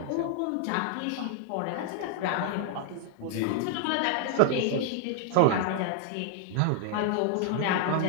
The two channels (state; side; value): different; both; correlation 0.00